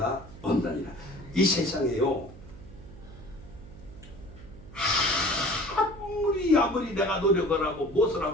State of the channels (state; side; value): noise; right; hum, 17 dB below the sound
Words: 없나니라. 이 세상에요, 아무리 내가 노력을 하고 무엇을